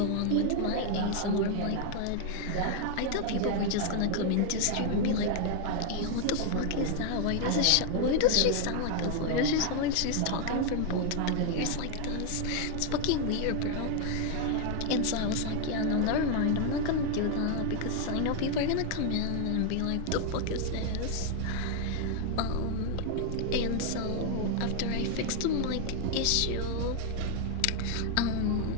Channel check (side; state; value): both; different; correlation 0.00